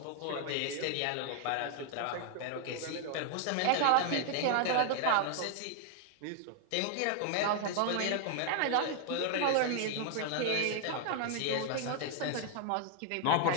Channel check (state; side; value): different; both; correlation 0.00